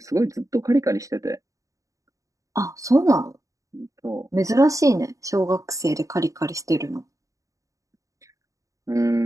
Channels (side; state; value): left; late; 0.16 ms